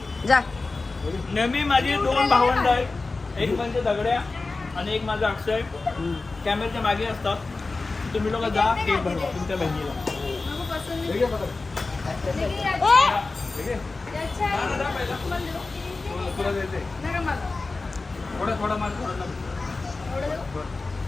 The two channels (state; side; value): quieter; right; 3.6 dB